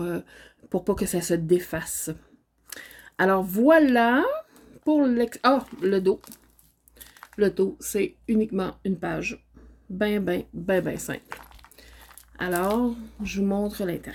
pas que ça se défasse. Alors voilà pour le dos. Le dos, c'est uniquement une page. Ben simple. Alors, je vous montre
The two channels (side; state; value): both; identical; correlation 1.00